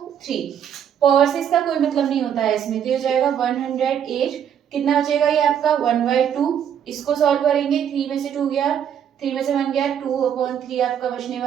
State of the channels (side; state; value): left; quieter; 8.9 dB